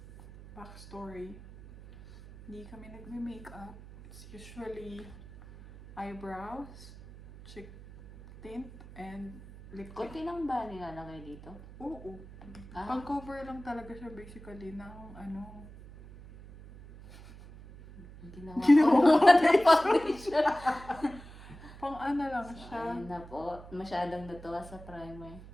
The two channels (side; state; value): right; noise; hum, 17 dB below the sound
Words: backstory. Hindi kami nagme-makeup. It's usually eyebrows, cheek tint, and lip tint. Kunti lang ba nilalagay dito? Oo. Ah, Pang-cover lang talaga siya basically ng ano. ginawa Ginawa ko ko ng foundation. Pang ano lang So, siya. ayun na po. Masyadong natuwa sa primer.